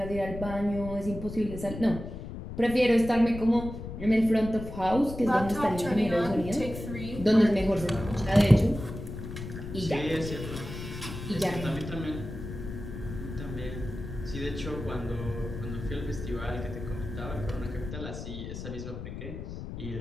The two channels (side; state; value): left; noise; rumble, 9 dB below the sound